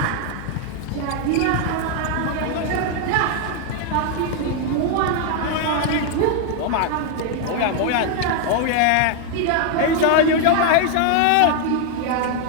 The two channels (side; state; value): both; different; correlation 0.00